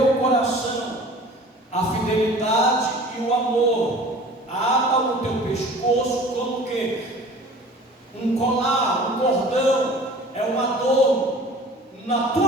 coração, a fidelidade e o amor. Ata no teu pescoço como que um colar, um cordão, é um adorno. Na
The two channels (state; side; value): normal; both; correlation 0.45